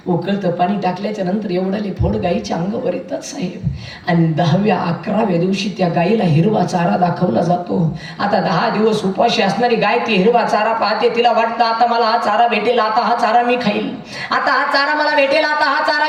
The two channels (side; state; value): both; identical; correlation 1.00